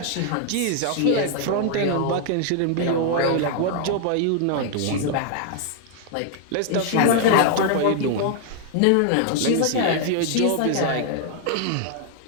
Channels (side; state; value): both; different; correlation 0.00